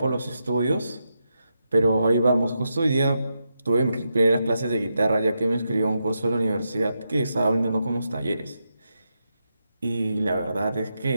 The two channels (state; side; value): inverted; both; correlation -0.85